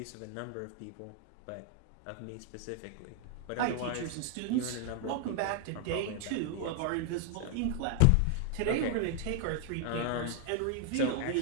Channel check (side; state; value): both; different; correlation 0.00